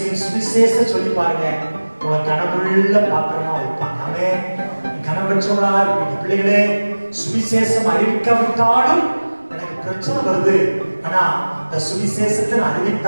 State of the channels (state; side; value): inverted; both; correlation -1.00